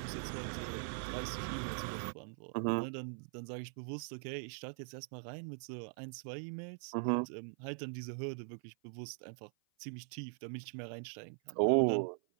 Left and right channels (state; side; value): silent; left; 50 dB below the other